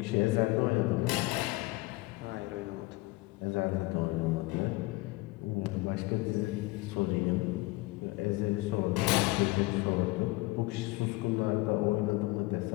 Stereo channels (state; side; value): quieter; right; 22.0 dB